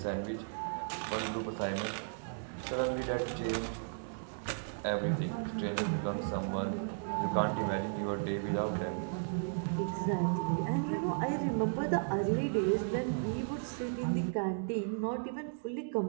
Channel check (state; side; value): silent; left; digital silence